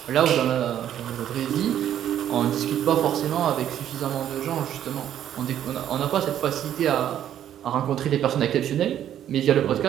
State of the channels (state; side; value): quieter; left; 10.7 dB